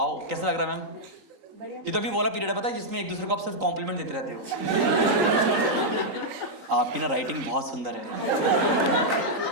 कैसा लग रहा है मैम? ये तो अभी वो वाला पीरियड है पता है जिसमें एक दूसरे को आप सिर्फ कॉम्प्लीमेंट देते रहते हो। आपकी ना राइटिंग बहुत सुंदर है।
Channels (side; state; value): left; late; 3.9 ms